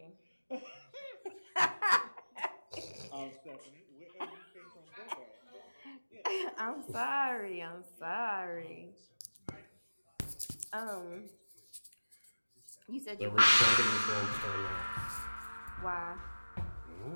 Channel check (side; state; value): both; inverted; correlation -1.00